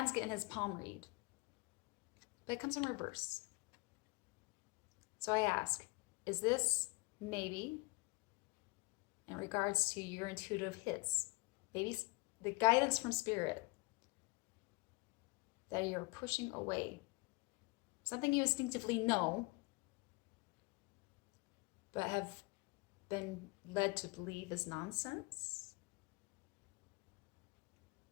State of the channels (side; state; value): right; quieter; 26.7 dB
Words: getting his palm read. But it comes in reverse. So I ask, is this maybe in regards to your intuitive hits, maybe the guidance from Spirit that you're pushing away? Something you instinctively know, but have been led to believe is nonsense?